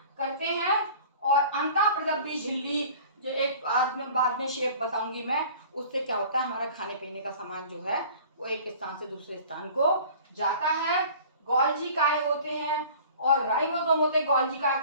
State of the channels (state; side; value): inverted; both; correlation -0.45